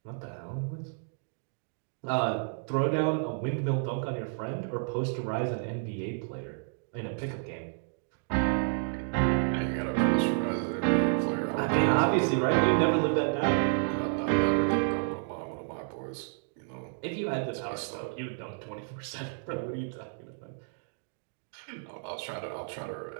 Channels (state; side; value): silent; left; 57 dB below the other